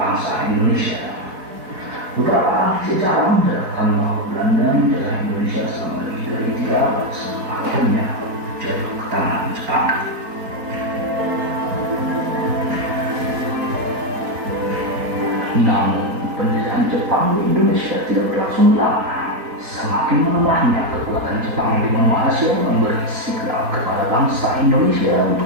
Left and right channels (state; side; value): late; left; 4.3 ms